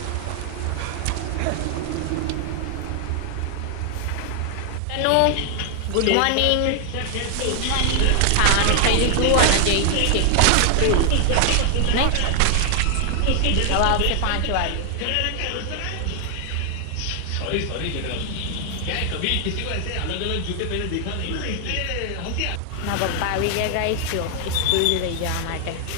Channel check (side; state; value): both; different; correlation 0.00